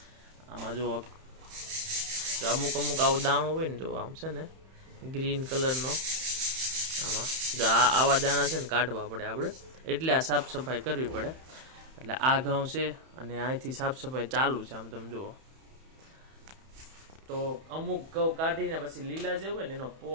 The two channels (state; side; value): late; left; 31 ms